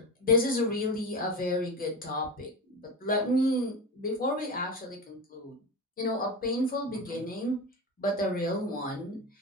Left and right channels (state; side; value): normal; both; correlation 0.23